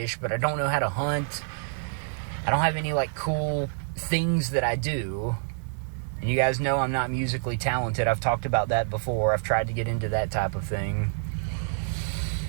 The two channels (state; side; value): silent; left; digital silence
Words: but I don't know how to hunt. I don't have any, cool things that I do. And you guys know I'm not musically talented. I've talked about that before. I've tried to get into that type of thing.